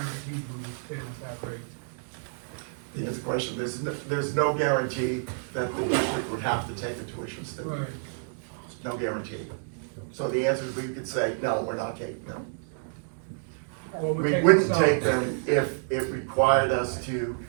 we will stay with that rate. The answer question, there's no guarantee that the district would have to take the tuition student. Right. No guarantee. So the answer is we could say, no, we're not taking them. Well, we're We taking wouldn't some. take them if it required us to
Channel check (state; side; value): silent; left; digital silence